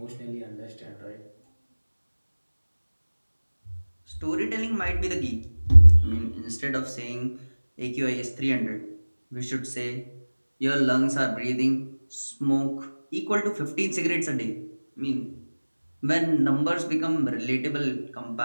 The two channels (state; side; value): inverted; both; correlation -1.00